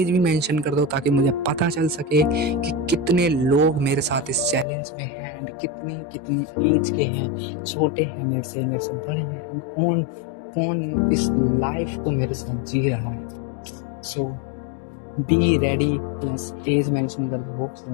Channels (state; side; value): drops out; right; at 4.7 s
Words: भी मेंशन कर दो, ताकि मुझे पता चल सके कि कितने लोग मेरे साथ इस चैलेंज में हैं, एंड कितनी एज के हैं, छोटे हैं मेरे से बड़े हैं, एंड कौन कौन इस लाइफ को मेरे साथ जी रहा है। So be ready plus as mention कर दो। So